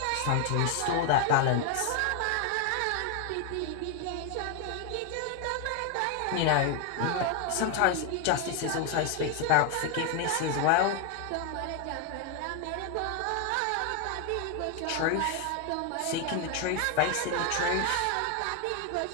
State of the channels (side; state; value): both; different; correlation 0.01